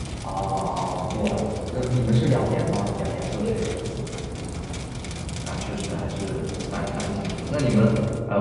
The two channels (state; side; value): identical; both; correlation 1.00